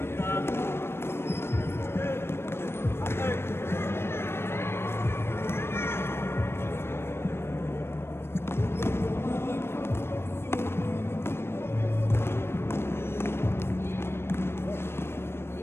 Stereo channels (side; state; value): right; late; 0.12 ms